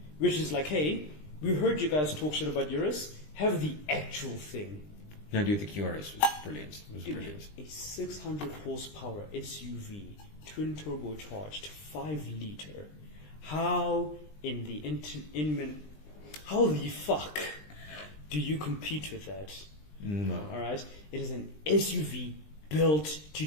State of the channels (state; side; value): late; right; 20 ms